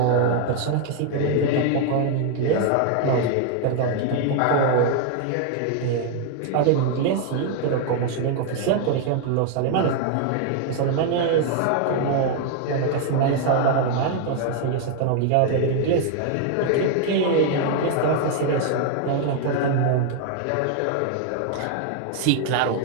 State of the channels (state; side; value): different; both; correlation 0.00